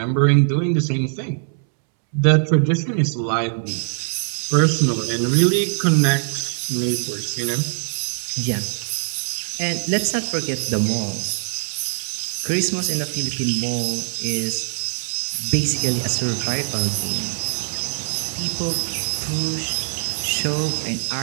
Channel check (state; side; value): silent; left; 64 dB below the other